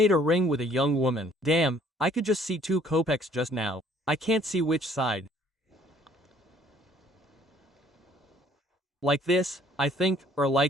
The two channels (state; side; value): normal; both; correlation 0.60